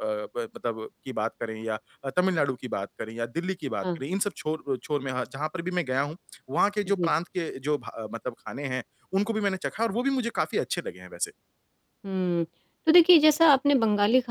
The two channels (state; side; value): identical; both; correlation 1.00